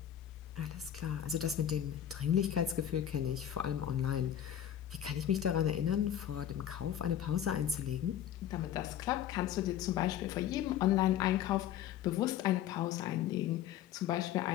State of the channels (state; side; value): quieter; right; 10.6 dB